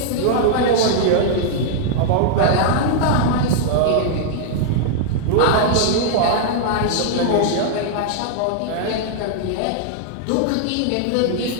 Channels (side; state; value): both; different; correlation -0.01